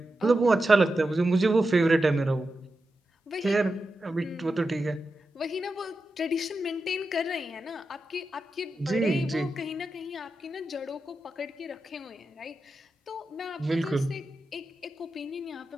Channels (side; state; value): both; normal; correlation 0.90